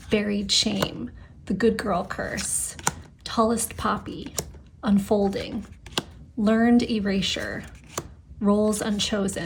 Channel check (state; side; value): identical; both; correlation 1.00